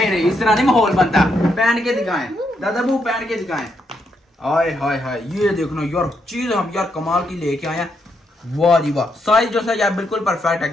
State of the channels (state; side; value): normal; both; correlation 0.79